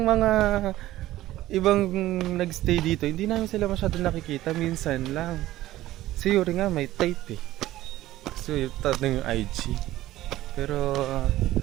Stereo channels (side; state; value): left; quieter; 15.3 dB